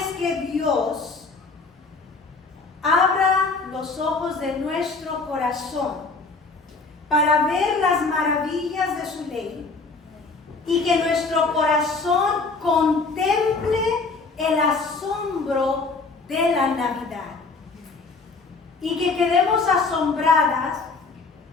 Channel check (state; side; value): quieter; right; 4.1 dB